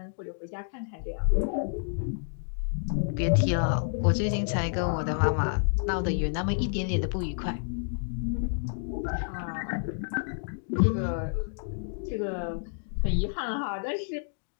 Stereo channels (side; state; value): right; silent; digital silence